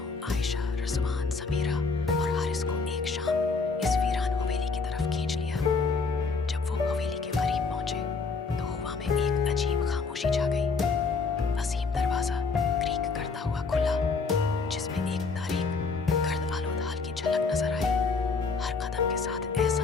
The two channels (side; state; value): right; quieter; 4.5 dB